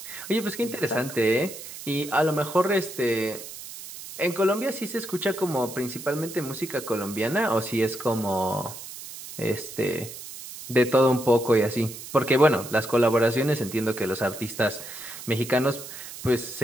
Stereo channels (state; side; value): noise; right; hiss, 12 dB below the sound